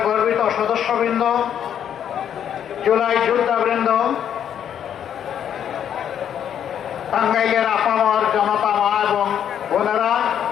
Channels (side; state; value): right; quieter; 9.3 dB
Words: গর্বিত সদস্যবৃন্দ, জুলাই যোদ্ধাবৃন্দ, টাঙ্গাইলের আপামর জনতা মা এবং বোনেরা,